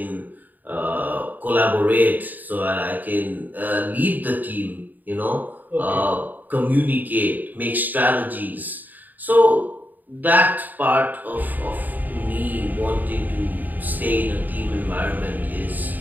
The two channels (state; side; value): late; left; 0.085 ms